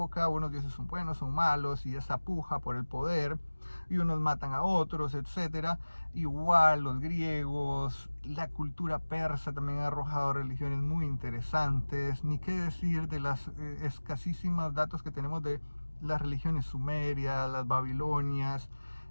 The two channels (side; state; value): both; inverted; correlation -1.00